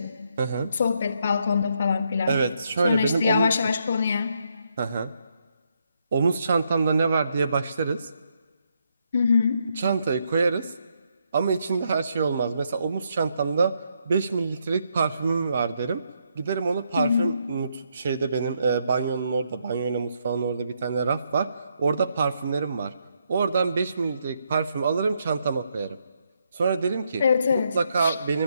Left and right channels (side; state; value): both; inverted; correlation -0.77